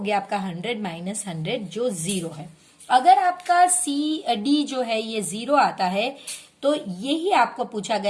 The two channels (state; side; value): identical; both; correlation 1.00